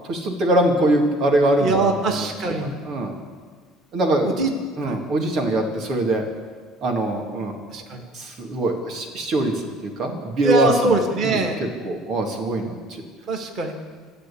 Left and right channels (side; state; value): both; normal; correlation 0.53